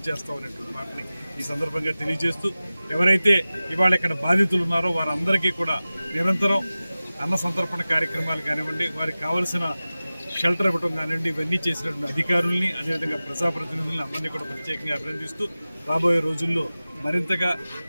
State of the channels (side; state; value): both; inverted; correlation -0.96